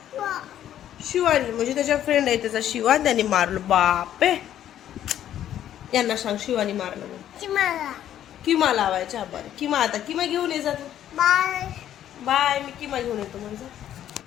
शिवानी म्हणजे त्याच्या फ्रेंड आहे त्याचा शिवा, त्याने मारलं. बापे, यांना सांग शिवानी मारलं. किमा लावायच्या. बरं किमा, आता किमा घेऊन ये जा. बाय, मी किमा घेऊन येतो म्हणजे.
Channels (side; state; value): right; quieter; 11.2 dB